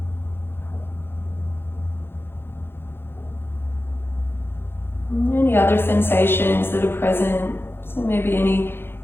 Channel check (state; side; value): late; right; 0.11 ms